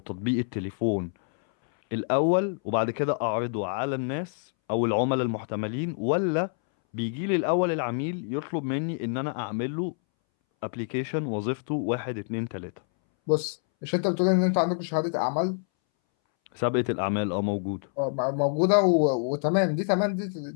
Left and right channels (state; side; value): silent; right; 60 dB below the other